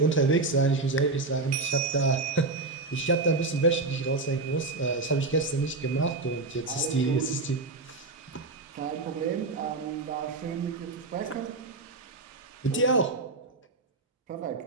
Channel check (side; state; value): left; quieter; 3.5 dB